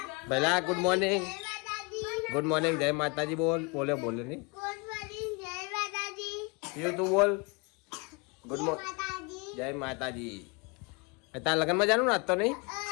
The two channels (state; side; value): quieter; right; 29.5 dB